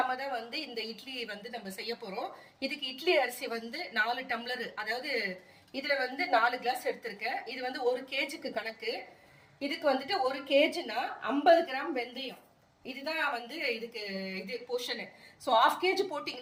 தான் வந்து இந்த இட்லி வந்து நம்ம செய்ய போறோம். இதுக்கு இட்லி அரிசி வந்து 4 டம்ளர், அதாவது இதுல வந்து 4 கிளாஸ் எடுத்திருக்கேன். இது வந்து 1 கேஜிக்கு கணக்கு. இதுக்கு வந்துட்டு 1 கேஜினா 50 கிராம் வெந்தயம். இதுதான் வந்து இதுக்கு இது போர்ஷனு. ஸோ 1/2 கேஜி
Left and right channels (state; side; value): identical; both; correlation 1.00